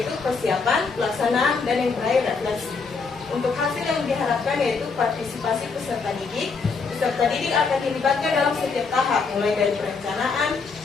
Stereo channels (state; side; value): quieter; right; 4.7 dB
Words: persiapan, pelaksanaan, dan yang terakhir refleksi. Untuk hasil yang diharapkan yaitu partisipasi peserta didik. Peserta didik akan dilibatkan dalam setiap tahap, mulai dari perencanaan,